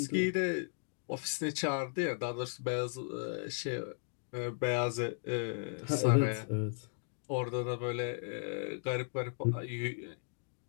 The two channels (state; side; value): silent; right; digital silence